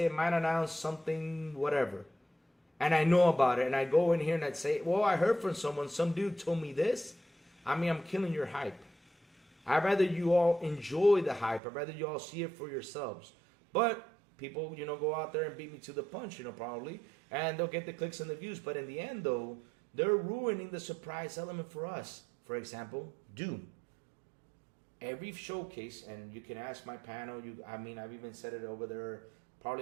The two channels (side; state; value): left; drops out; at 11.6 s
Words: it might announce something, whatever. And I know about it, and I go in here and I'd say, well, I heard from someone, some dude told me this. I mean, I'm killing your hype. I'd rather you all enjoy the hype. I'd rather you all see it for yourselves. But people, you know, go out there and beat me to the punch, you know, probably. And they'll get the clicks and the views. But in the end, though, they're ruining the surprise element for us. For example, Doom. Every showcase, and you can ask my panel, I've even said it over there,